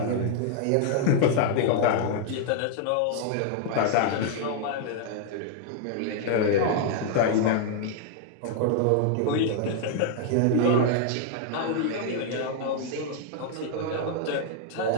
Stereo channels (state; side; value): different; both; correlation -0.01